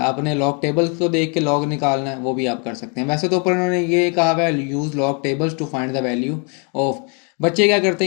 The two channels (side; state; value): right; quieter; 37.2 dB